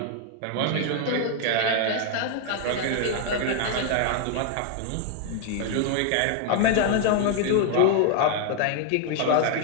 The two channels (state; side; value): different; both; correlation 0.00